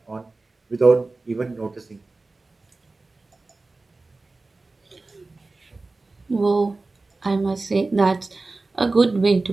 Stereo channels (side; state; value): left; quieter; 3.4 dB